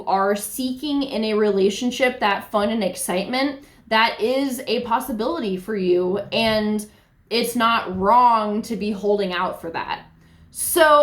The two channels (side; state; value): both; identical; correlation 1.00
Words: are seeking in a relationship, that fun and excitement, that is a possibility for you, and it's not wrong to be holding out for that.